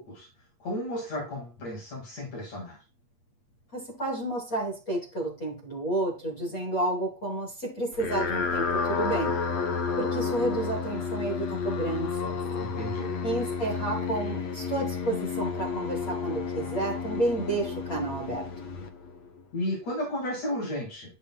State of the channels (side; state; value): right; late; 8.4 ms